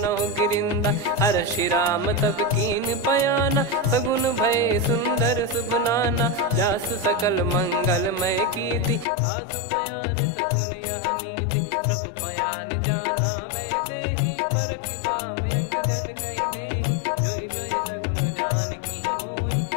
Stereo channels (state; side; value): drops out; right; at 9.1 s